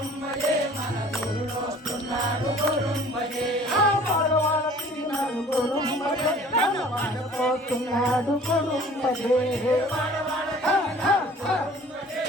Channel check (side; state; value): both; normal; correlation 0.50